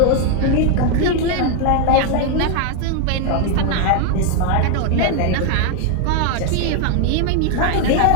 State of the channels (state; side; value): different; both; correlation 0.00